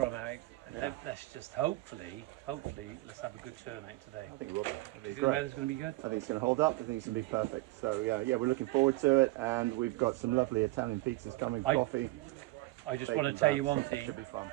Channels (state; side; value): quieter; left; 19.8 dB